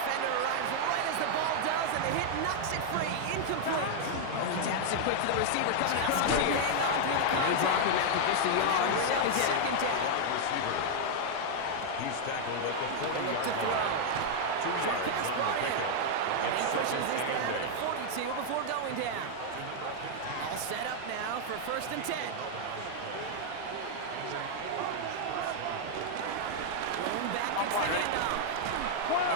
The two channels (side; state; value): both; different; correlation -0.01